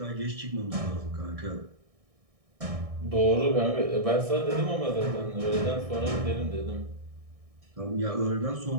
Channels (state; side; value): late; left; 1.6 ms